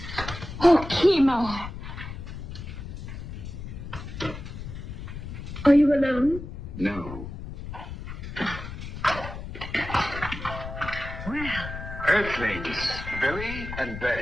Oh, Kimar. Are you alone? No. Well, Earthlings, Billy and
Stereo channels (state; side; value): noise; left; rumble, 9 dB below the sound